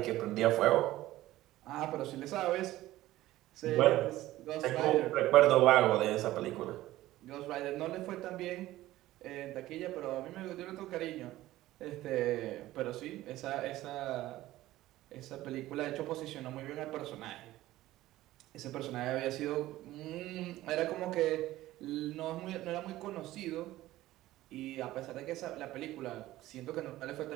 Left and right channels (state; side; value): quieter; left; 15.9 dB